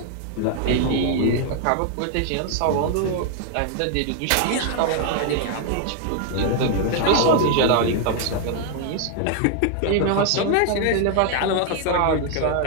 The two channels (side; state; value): both; different; correlation 0.00